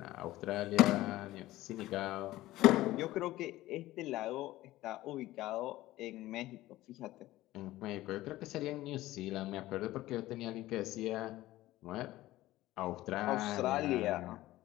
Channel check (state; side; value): quieter; right; 16.5 dB